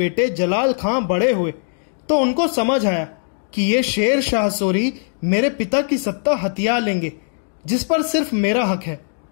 जलाल खान बड़े हुए तो उनको समझ आया कि ये शेर शाह सूरी मेरे पिता की सत्ता हथिया लेंगे, जिस पर सिर्फ मेरा हक है।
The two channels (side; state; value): right; silent; digital silence